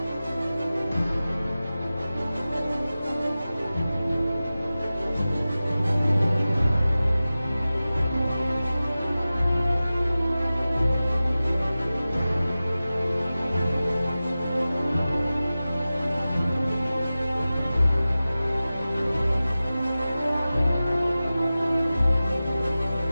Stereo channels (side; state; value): both; inverted; correlation -0.96